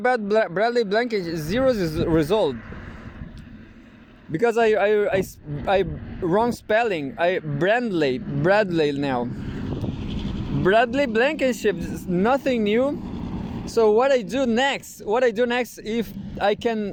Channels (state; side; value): identical; both; correlation 1.00